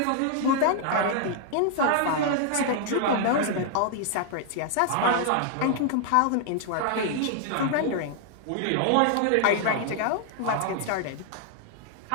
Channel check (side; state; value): both; different; correlation 0.00